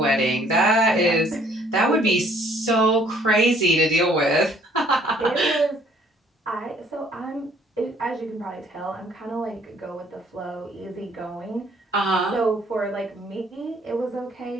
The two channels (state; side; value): normal; both; correlation 0.61